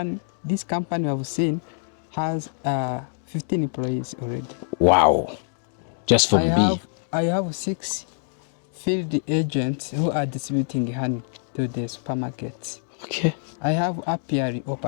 This company I've seen has 15 employees already. Wow. Just for I bee. have 6 field agents who are distributing honey to the supermarkets. Okay. I have apiary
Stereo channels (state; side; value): silent; right; digital silence